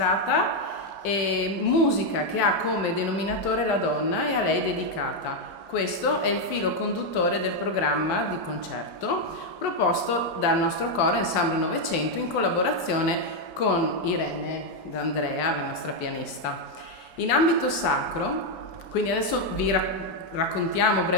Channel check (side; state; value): right; late; 4.6 ms